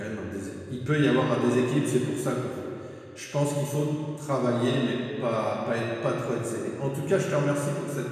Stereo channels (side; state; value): both; identical; correlation 1.00